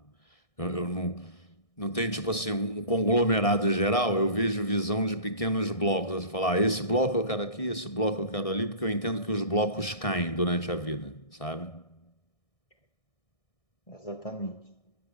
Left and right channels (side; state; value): right; late; 1.6 ms